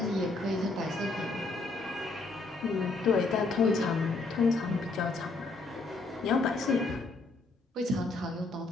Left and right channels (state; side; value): quieter; right; 3.5 dB